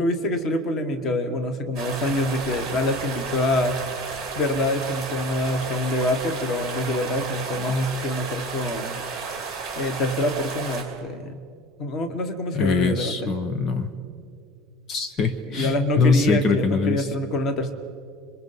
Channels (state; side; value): normal; both; correlation 0.43